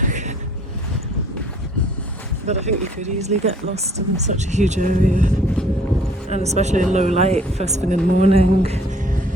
But I think you could easily get lost in such a huge area, and especially in low light, first thing in the morning,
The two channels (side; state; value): both; normal; correlation 0.57